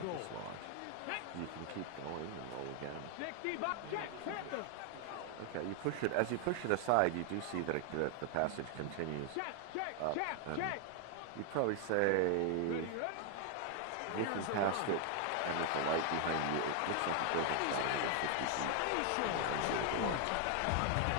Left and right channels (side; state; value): both; different; correlation 0.00